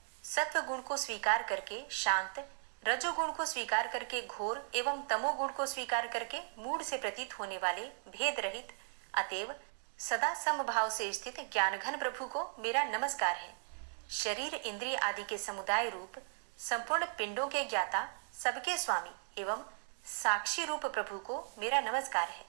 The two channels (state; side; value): silent; left; digital silence